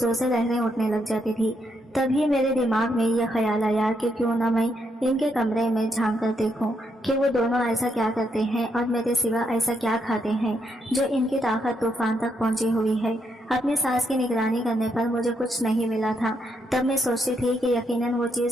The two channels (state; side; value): normal; both; correlation 0.78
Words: سے لہریں اٹھنے لگ جاتی تھی۔ تبھی میرے دماغ میں یہ خیال آیا کہ کیوں نہ میں ان کے کمرے میں جھانک کر دیکھوں کہ وہ دونوں ایسا کیا کرتے ہیں اور میرے سوا ایسا کیا کھاتے ہیں جو ان کی طاقت طوفان تک پہنچی ہوئی ہے۔ اپنی ساس کی نگرانی کرنے پر مجھے کچھ نہیں ملا تھا۔ تب میں سوچتی تھی کہ یقیناً وہ